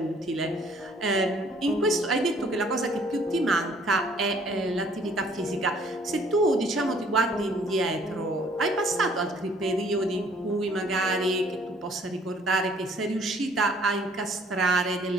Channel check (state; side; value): normal; both; correlation 0.59